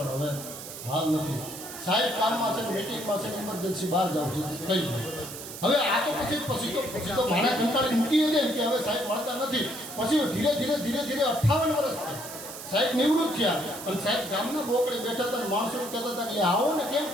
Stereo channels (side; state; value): right; noise; hiss, 11 dB below the sound